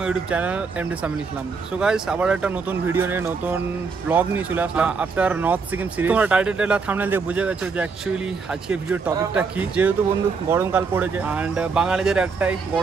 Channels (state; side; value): quieter; left; 4.9 dB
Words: YouTube channel MD Samil Islam. So guys, আবার একটা নতুন ভিডিও নিয়ে নতুন ব্লগ নিয়ে চলে আসলাম আফটার নর্থ সিকিম সিরিজ। তোমরা টাইটেল আর থাম্বনেল দেখে বুঝে গেছো যে অ্যাকচুয়ালি আজকে ভিডিওর টপিকটা কি। যেহেতু বন্ধু গরমকাল পড়েছে এন্ড বাঙালিদের একটাই